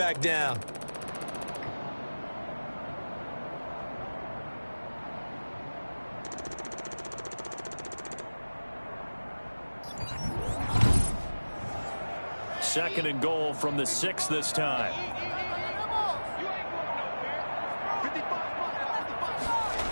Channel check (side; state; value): both; inverted; correlation -1.00